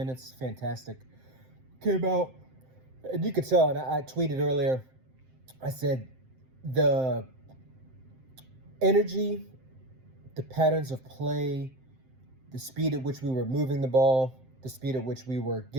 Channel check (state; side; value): late; left; 7.7 ms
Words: fantastic. Came out, and you could tell, and I tweeted earlier, I said the energy, the patterns of play, the speed at which we were moving the ball, the speed at which we were